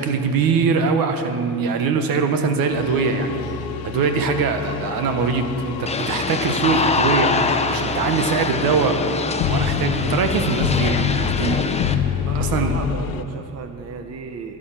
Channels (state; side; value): normal; both; correlation 0.14